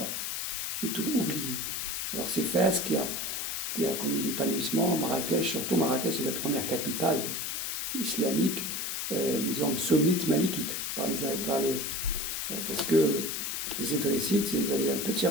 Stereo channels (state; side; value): noise; left; hiss, 2 dB below the sound